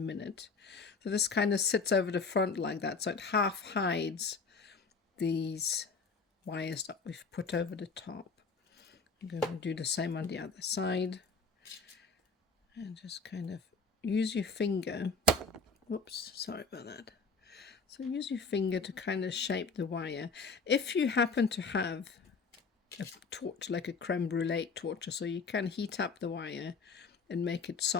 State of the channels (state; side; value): quieter; right; 4.4 dB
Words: So this kind of sits over the front like that, so it half hides these wires that we've put over the top. I'm going to do the same on the other side, and just kind of use your finger, whoops, sorry about that. So use your finger to kind of shape the wire. If you happen to have a torch, like a creme brulee torch, so you can heat up the wire and make it